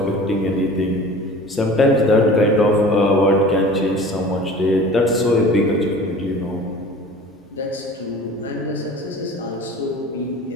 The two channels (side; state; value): both; normal; correlation 0.42